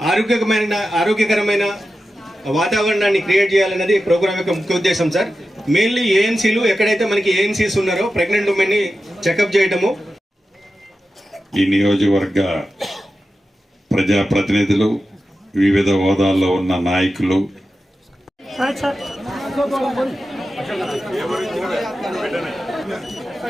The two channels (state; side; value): normal; both; correlation 0.92